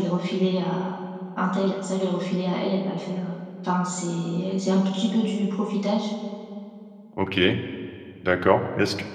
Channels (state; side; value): identical; both; correlation 1.00